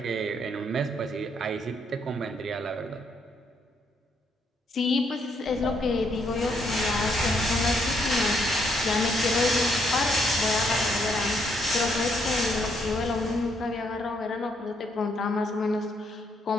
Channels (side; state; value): both; normal; correlation 0.73